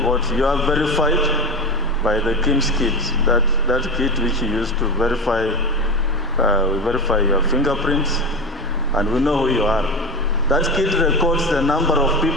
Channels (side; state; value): both; normal; correlation 0.22